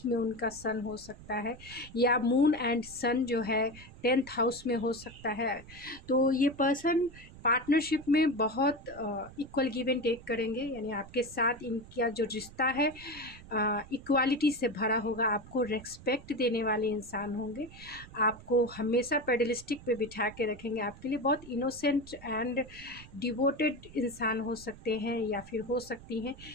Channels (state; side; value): noise; right; rumble, 18 dB below the sound